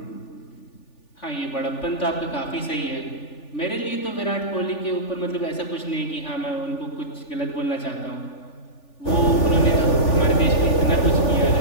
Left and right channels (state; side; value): late; right; 3.4 ms